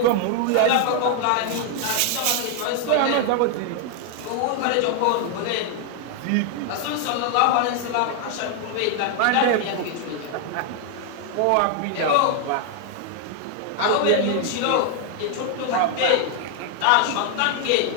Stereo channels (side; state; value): both; different; correlation 0.00